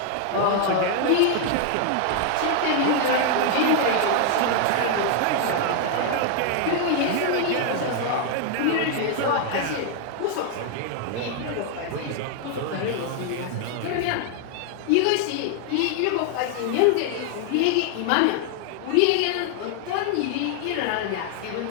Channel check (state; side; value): different; both; correlation 0.00